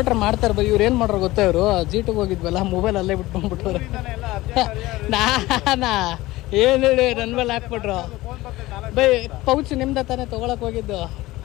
ಮಾಡ್ತಾರೆ ಬೈ. ಇವ್ರು ಏನು ಮಾಡ್ರು ಗೊತ್ತಾ, ಇವರು G2 ಹೋಗಿದ್ವಲ್ಲ, ಮೊಬೈಲ್ ಅಲ್ಲೇ ಬಿಟ್ಕೊಂಡ್ಬಿಟ್ಟವ್ರೆ. ನಾನಾ ಏನು ಹೇಳಿ ನನ್ನ ಮೇಲೆ ಹಾಕ್ಬಿಟ್ರು ಬೈ. ಪೌಚ್ ನಿಮ್ದ ತಾನೇ ತೊಗೊಳಕ್ ಹೋಗಿದ್ದು.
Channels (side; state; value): right; quieter; 18.5 dB